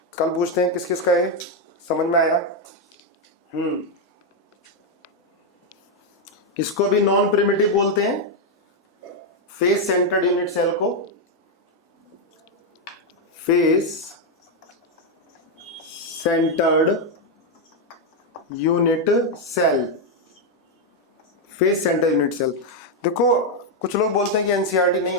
कल पूछते हैं किस किस का है, समझ में आया। इसको भी नॉन प्रिमिटिव बोलते हैं, फेस सेंटर्ड यूनिट सेल को, face centered unit cell, face centered unit cell. देखो कुछ लोग बोलते हैं कि एनसीईआरटी नहीं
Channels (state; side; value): normal; both; correlation 0.02